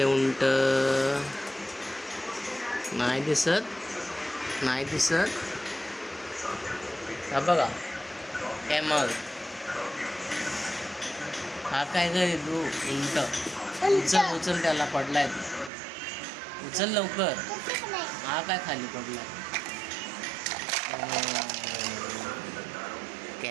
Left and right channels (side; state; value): left; drops out; at 15.7 s